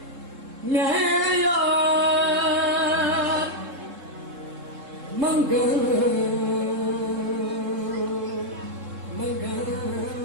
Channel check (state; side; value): late; left; 3.7 ms